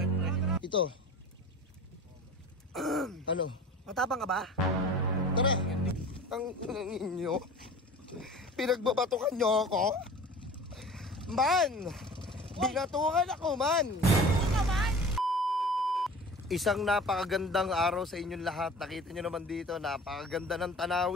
pre? Ito. Ano? Matapang ka ba? Tara. Ang ninyo. Pinagbabatukan nyo ako. Man! Binatukan ako man! Isang napakagandang araw sa inyong lahat. Nakita nyo naman dito, napakaganda ng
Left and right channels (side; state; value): both; normal; correlation 0.40